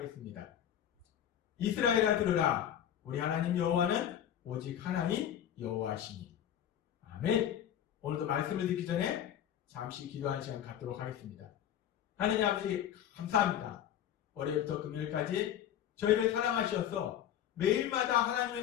이스라엘아 들으라. 우리 하나님 여호와는 오직 하나님 여호와시니. 아멘. 오늘도 말씀을 듣기 전에 잠시 기도하는 시간 갖도록 하겠습니다. 하나님 아버지 감사합니다. 월요일부터 금요일까지 저희를 사랑하셔서 매일마다 하나님의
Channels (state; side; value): quieter; right; 10.3 dB